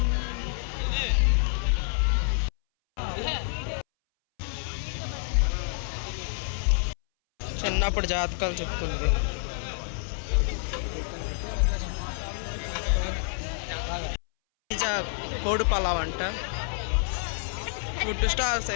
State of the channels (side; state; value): right; silent; 59 dB below the other